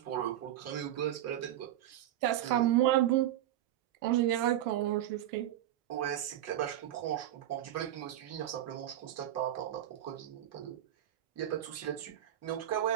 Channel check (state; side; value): quieter; left; 12.5 dB